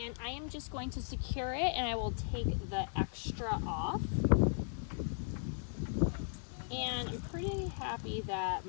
I am just going to secure it, and I will take the extra off. And I'm pretty happy that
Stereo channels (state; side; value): silent; right; 53 dB below the other